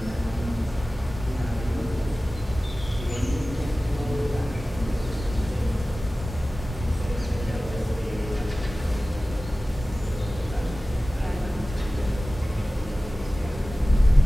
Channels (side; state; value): both; normal; correlation 0.97